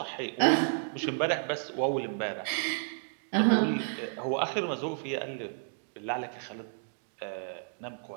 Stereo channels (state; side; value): silent; left; digital silence